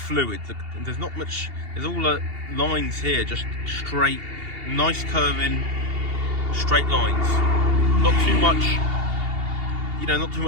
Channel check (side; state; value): left; late; 2.8 ms